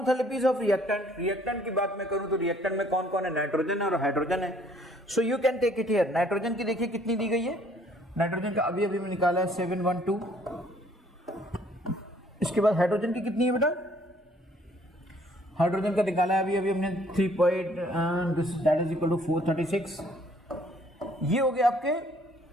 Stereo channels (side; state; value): both; normal; correlation 0.61